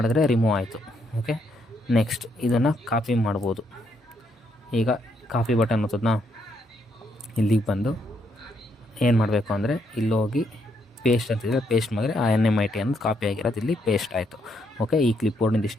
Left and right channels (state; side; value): normal; both; correlation 0.75